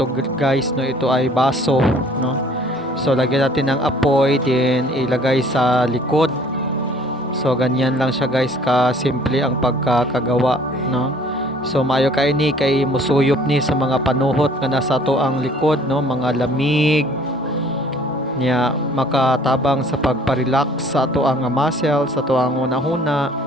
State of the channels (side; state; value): both; normal; correlation 0.54